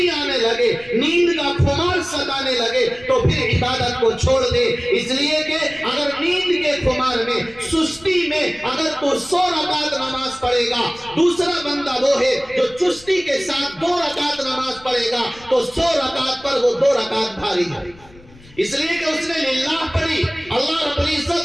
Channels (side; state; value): left; noise; rumble, 24 dB below the sound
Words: آنے لگے, نیند کا خمار ستانے لگے, تو پھر عبادت کو چھوڑ دے. اس لیے کہ اگر نیند کے خمار میں, سستی میں اگر تو 100 رکعت نماز پڑھے گا, دوسرا بندہ وہ ہے جو چستی کے ساتھ 2 رکعت نماز پڑھے گا, تو 100 رکعت پر وہ 2 رکعت بھاری ہے. اس لیے کہ اس نے للہ پڑھی, اللہ رب